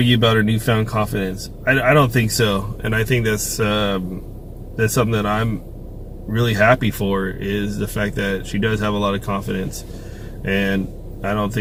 about her newfound confidence? I don't think so, and I think that's something that I'm really happy for, is the fact that she does have a lot of confidence. And I don't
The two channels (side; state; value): both; identical; correlation 1.00